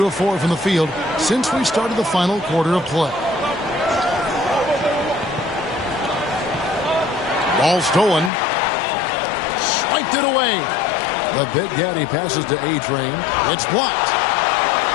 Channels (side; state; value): right; drops out; at 8.3 s